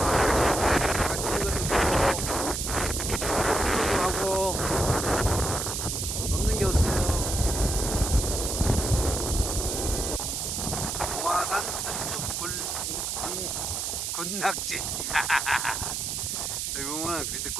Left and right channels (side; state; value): right; noise; hiss, 2 dB below the sound